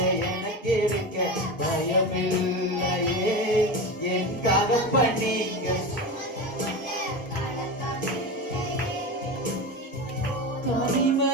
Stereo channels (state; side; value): normal; both; correlation 0.23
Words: எனக்கு இருக்க பயமில்லையே, என் தகப்பன் நீங்க.